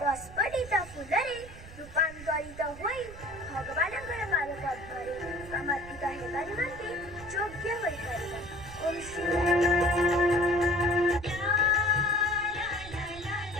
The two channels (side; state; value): right; noise; rumble, 16 dB below the sound